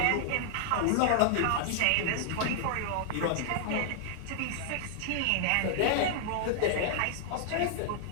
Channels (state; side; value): different; both; correlation -0.01